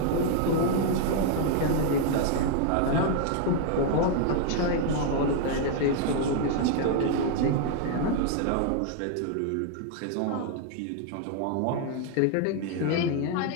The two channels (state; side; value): different; both; correlation 0.00